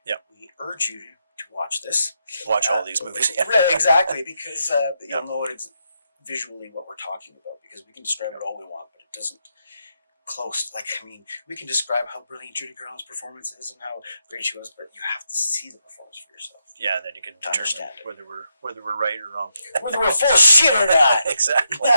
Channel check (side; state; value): both; inverted; correlation -0.81